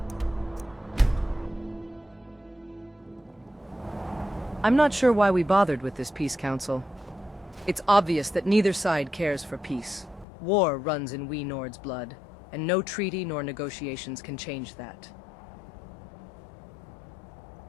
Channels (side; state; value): right; drops out; at 10.2 s